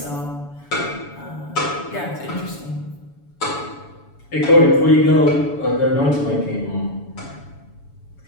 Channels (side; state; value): right; late; 7.0 ms